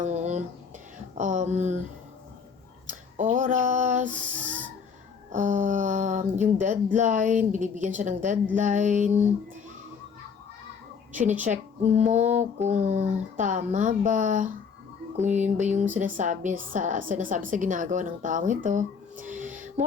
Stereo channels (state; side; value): quieter; right; 6.1 dB